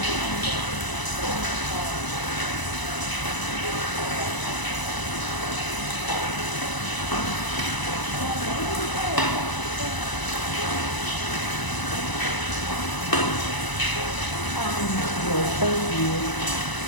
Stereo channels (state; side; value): late; right; 1.0 ms